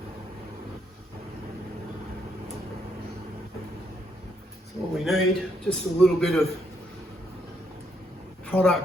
All we need, just a little bit of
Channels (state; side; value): normal; both; correlation 0.74